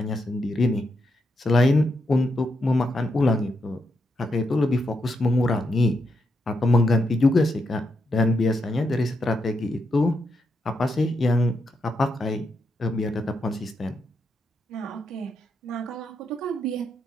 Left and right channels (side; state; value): both; normal; correlation 0.82